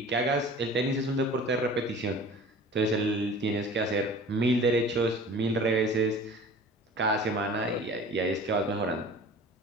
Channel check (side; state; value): both; normal; correlation 0.42